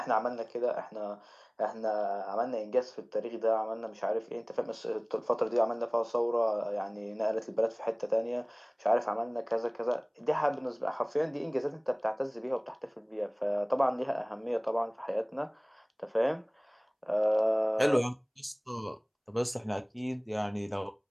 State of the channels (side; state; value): both; identical; correlation 1.00